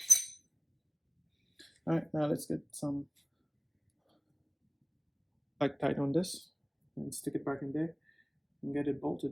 Alright, now let's get some tight on this and stick it back in there and get it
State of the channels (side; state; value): both; identical; correlation 1.00